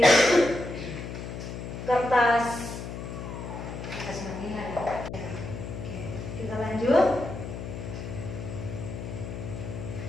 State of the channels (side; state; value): left; noise; hum, 8 dB below the sound